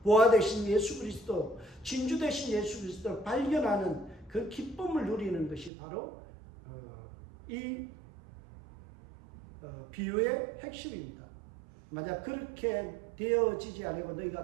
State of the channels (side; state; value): left; drops out; at 5.7 s